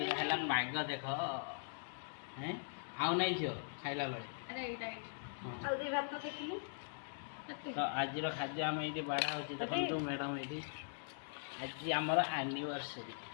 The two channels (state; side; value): silent; right; digital silence